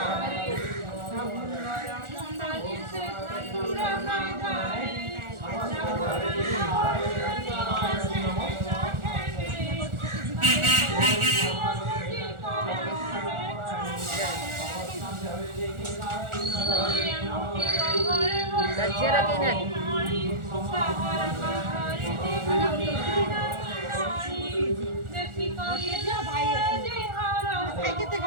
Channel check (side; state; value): left; late; 1.4 ms